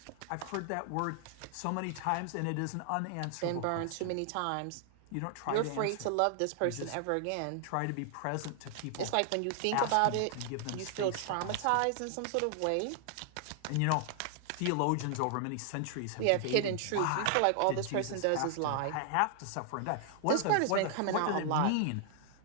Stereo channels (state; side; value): different; both; correlation 0.00